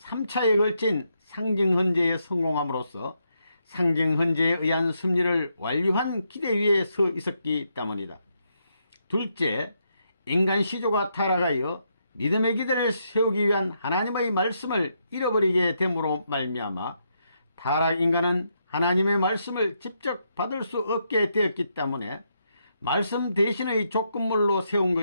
걸친 상징 헌제에 성공함으로써 상징 헌제에 의한 승리를 완료한 기대 위에 서 있었기 때문이다. 둘째, 인간 시조가 타락하여 믿음의 기대를 세우기 위한 하나님의 말씀을 잃어버리게 됨으로 말미암아 타락 인간은 하나님의 말씀을 직접 받을 수 없게 되었기 때문에 말씀 대신의 조건물로 세운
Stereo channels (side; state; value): both; inverted; correlation -0.79